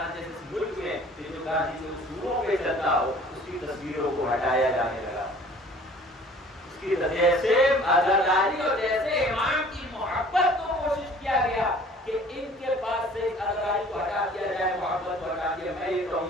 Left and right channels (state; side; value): normal; both; correlation 0.50